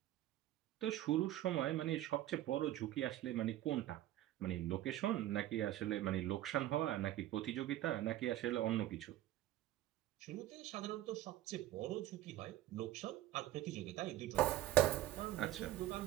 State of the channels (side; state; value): left; quieter; 14.3 dB